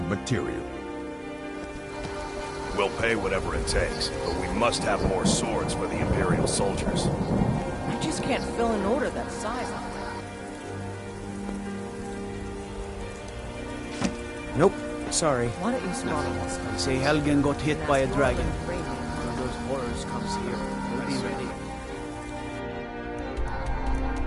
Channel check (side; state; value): both; identical; correlation 1.00